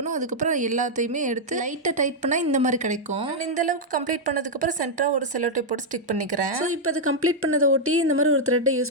அதுக்கப்புறம் எல்லாத்தையுமே எடுத்து லைட்டாக டைட் பண்ணால் இந்த மாதிரி கிடைக்கும். இந்த அளவுக்கு கம்ப்ளீட் பண்ணதுக்கப்புறம் சென்டராக ஒரு செல்லோ டேப் போட்டு ஸ்டிக் பண்ணிக்கிறேன். ஸோ இப்போ அது கம்ப்ளீட் பண்ணதை ஒட்டி இந்த மாதிரி ஒரு த்ரெட்டை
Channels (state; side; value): normal; both; correlation -0.03